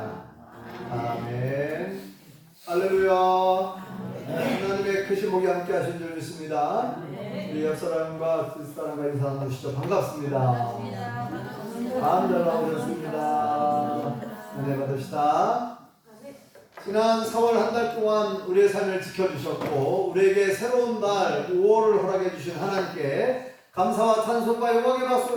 아멘. 할렐루야. 하나님의 크신 복이 함께 하신 줄 믿습니다. 우리 옆사람과 뒷사람과 인사 나누시죠. 반갑습니다. 잘 나오셨습니다. 은혜 받읍시다. 지난 4월 한 달 동안 우리의 삶을 지켜주셨고 우리에게 새로운 날 5월을 허락해 주신 하나님께 감사와 찬송과 영광의 박수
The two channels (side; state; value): both; identical; correlation 1.00